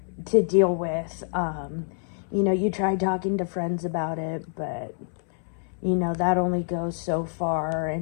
to deal with. You try talking to friends about it, but, that only goes so far.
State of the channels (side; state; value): right; silent; 60 dB below the other